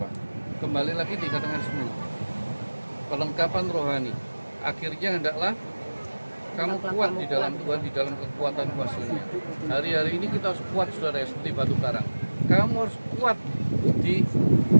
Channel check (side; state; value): both; inverted; correlation -1.00